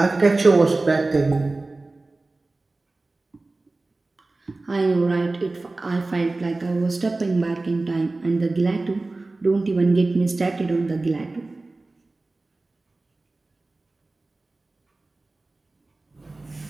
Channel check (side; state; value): left; quieter; 3.2 dB